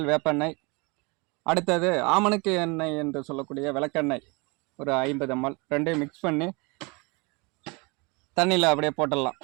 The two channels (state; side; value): quieter; left; 28.4 dB